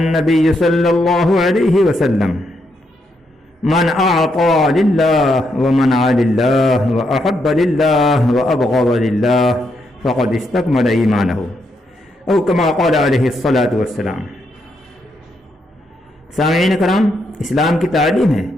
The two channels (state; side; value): normal; both; correlation 0.79